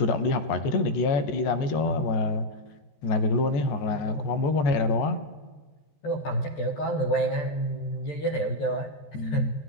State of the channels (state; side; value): late; right; 14 ms